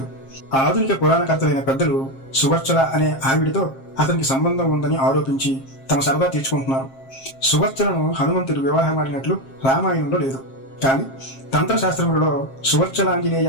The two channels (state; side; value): late; right; 7.5 ms